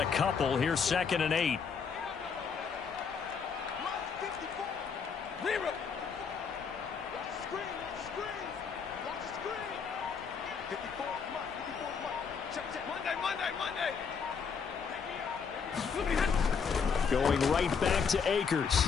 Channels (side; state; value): right; quieter; 6.1 dB